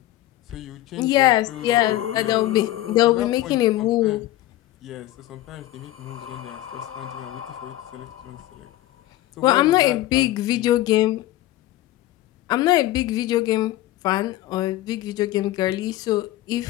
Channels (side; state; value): right; quieter; 15.6 dB